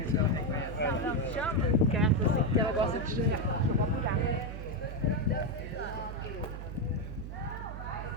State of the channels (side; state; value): right; noise; hum, 8 dB below the sound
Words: Que ela gosta de